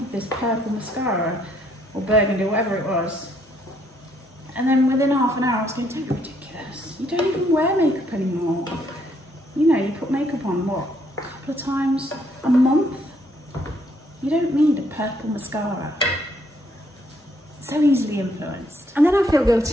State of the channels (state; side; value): normal; both; correlation 0.70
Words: this purple mascara or burgundy, whatever it was. And then within half an hour I was going, don't be ridiculous. You don't even wear makeup anymore. You know, you put makeup on, what, a couple of times a month? You don't need a purple mascara. So easily influenced. And then I feel